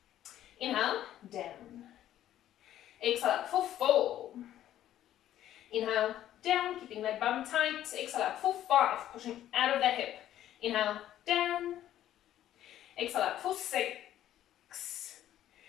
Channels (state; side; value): quieter; right; 12.2 dB